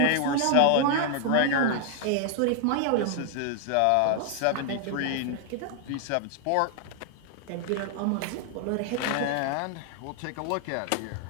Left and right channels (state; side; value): different; both; correlation 0.00